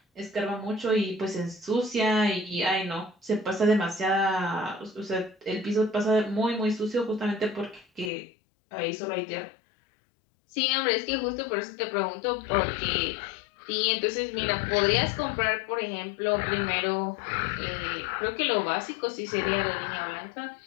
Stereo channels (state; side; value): drops out; right; at 8.1 s